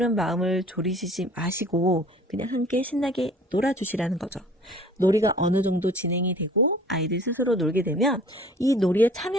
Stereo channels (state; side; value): normal; both; correlation 0.50